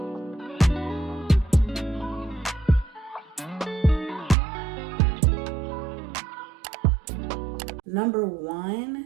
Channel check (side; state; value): left; drops out; at 4.4 s